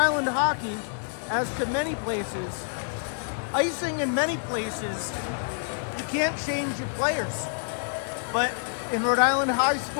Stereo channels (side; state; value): right; silent; digital silence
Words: hockey as to many places. Icing in many places, you can't change your players. But in Rhode Island high